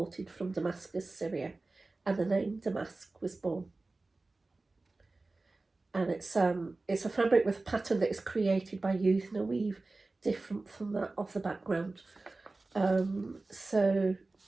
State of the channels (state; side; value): quieter; left; 3.3 dB